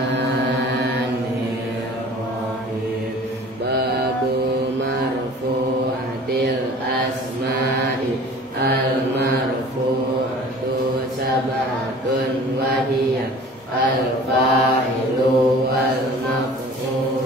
Babu marfu'atil asma'i. Al-marfu'atu sab'atun wa hiya al-fa'ilu wal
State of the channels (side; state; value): both; normal; correlation 0.45